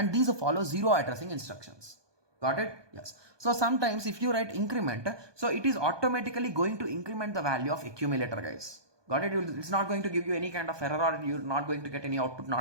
these follow zero addressing instructions. Got it? Yes. So sometimes if you write increment, so it is automatically going to increment the value of accumulator, guys. Got it? It's not going to give you any kind of error or you're not going to get any output,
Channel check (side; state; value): left; late; 1.2 ms